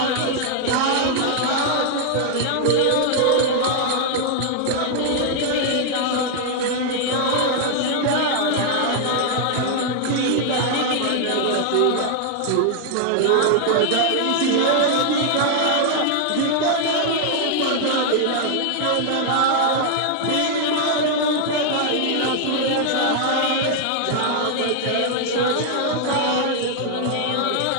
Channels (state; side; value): different; both; correlation 0.00